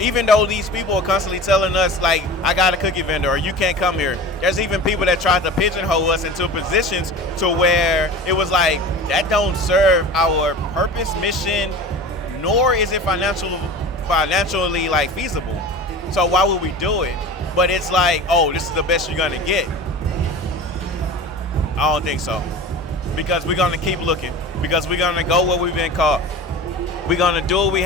Even though these people are constantly telling us, like, I got a cookie vendor or you can't come here. There's even people that tried to pigeonhole us into positions to where it was like, that don't serve our purpose, mission, nor is it financially like feasible. So why would we do it? But it's like, oh, this is the best you're gonna get. I don't think so. Because we're gonna keep looking. Because we're gonna go where we've been caught. We're gonna do what we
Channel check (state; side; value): normal; both; correlation 0.35